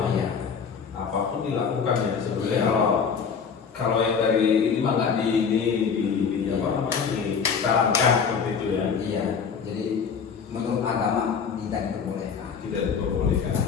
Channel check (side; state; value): right; quieter; 6.3 dB